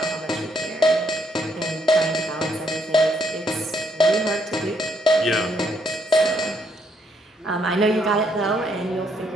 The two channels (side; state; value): both; normal; correlation 0.72